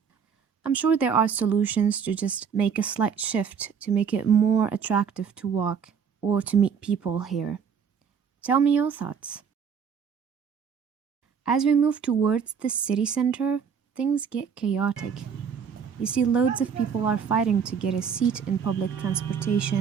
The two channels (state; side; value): quieter; left; 6.9 dB